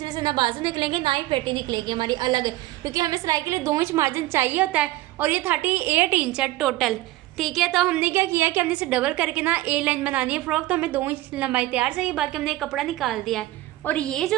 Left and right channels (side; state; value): left; quieter; 17.4 dB